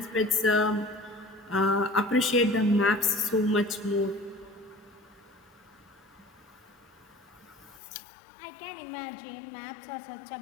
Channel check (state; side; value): drops out; right; at 7.8 s